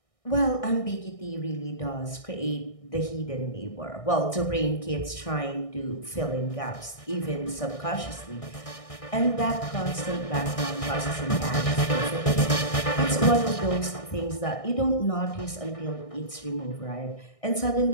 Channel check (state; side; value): late; right; 1.6 ms